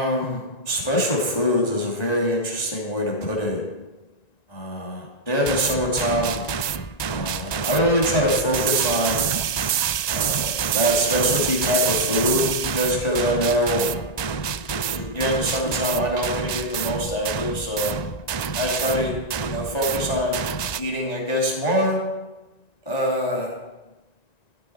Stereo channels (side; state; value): right; late; 1.9 ms